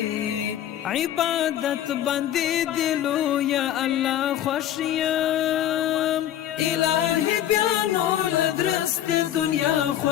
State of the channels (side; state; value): right; quieter; 11.5 dB